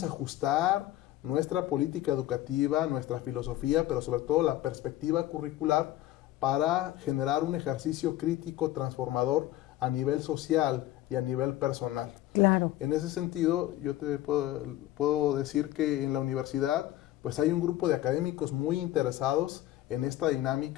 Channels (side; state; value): right; quieter; 14.9 dB